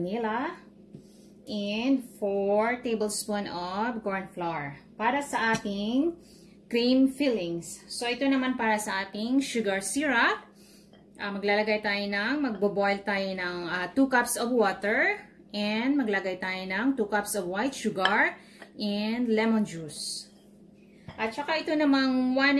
and 4 tablespoons of corn flour para sa ating cream fillings. So ito naman para sa ating sugar syrup. Maglalagay tayo magbo-boil tayo ng 2 cups of water, and maglagay tayo ng 2 cups of white sugar and lemon juice. At saka ito namang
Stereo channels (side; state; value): both; identical; correlation 1.00